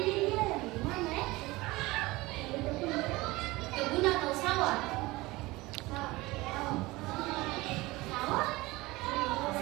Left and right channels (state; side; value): quieter; left; 20.9 dB